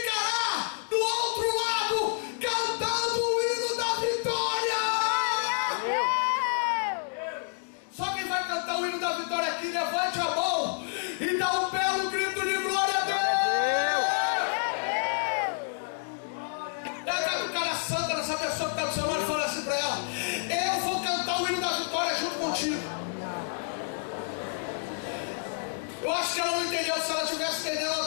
essa pessoa que está do seu lado e fala assim para ela: eu vou cantar o hino da vitória junto contigo. Eu acho que ela não entendeu. Se ela tivesse entendendo, ela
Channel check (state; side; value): silent; right; digital silence